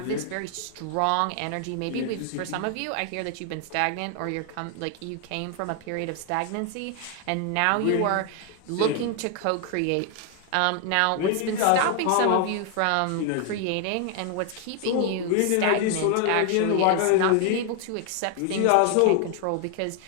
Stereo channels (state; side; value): different; both; correlation 0.00